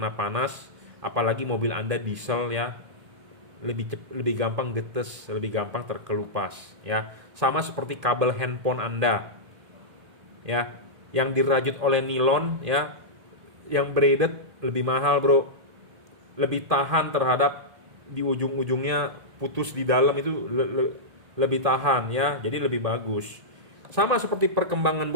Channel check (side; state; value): left; late; 1.8 ms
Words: panas, apalagi mobil Anda diesel ya. Lebih gampang getes, lebih gampang terkelupas ya. Sama seperti kabel handphone Anda. Ya, yang dirajut oleh nilon ya, yang braided lebih mahal, Bro. Lebih tahan terhadap di ujung-ujungnya putus di dalam itu lebih tahan ya, jadi lebih bagus. Sama seperti perkembangan